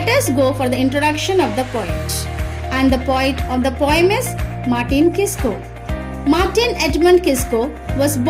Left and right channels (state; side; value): identical; both; correlation 1.00